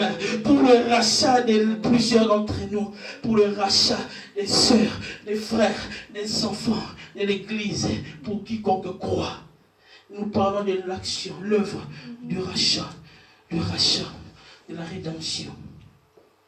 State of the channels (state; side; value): identical; both; correlation 1.00